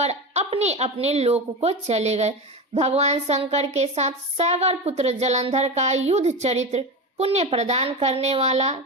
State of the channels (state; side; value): normal; both; correlation 0.22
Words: अपने अपने लोक को चले गए। भगवान शंकर के साथ सागर पुत्र जलंधर का युद्ध चरित्र पुण्य प्रदान करने वाला